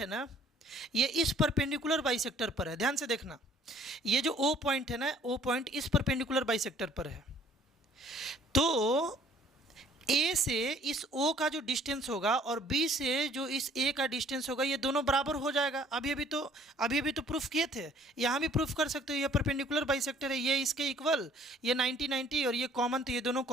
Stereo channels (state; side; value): normal; both; correlation 0.57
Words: ना, ये इस परपेंडिकुलर बाइसेक्टर पर है। ध्यान से देखना, ये जो ओ पॉइंट है ना, ओ पॉइंट इस परपेंडिकुलर बाइसेक्टर पर है। तो ए से इस ओ का जो डिस्टेंस होगा और बी से जो इस ए का डिस्टेंस होगा, ये दोनों बराबर हो जाएगा। अभी अभी तो प्रूफ किए थे, यहाँ भी प्रूफ कर सकते हो। ये परपेंडिकुलर बाइसेक्टर है, ये इसके इक्वल, ये 90-90 और ये कॉमन, तो ये दोनों